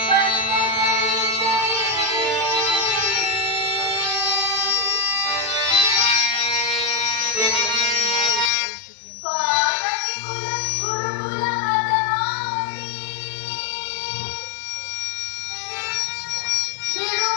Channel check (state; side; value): drops out; right; at 8.5 s